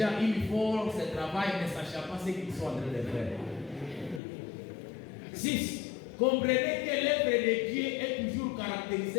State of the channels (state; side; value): drops out; right; at 4.2 s